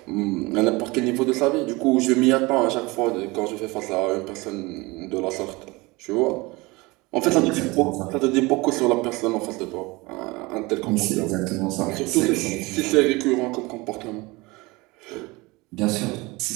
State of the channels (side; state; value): left; quieter; 23.6 dB